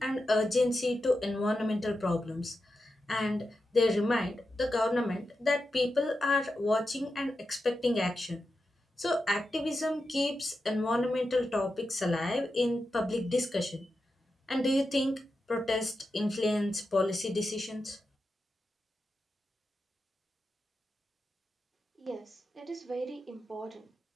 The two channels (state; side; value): normal; both; correlation 0.89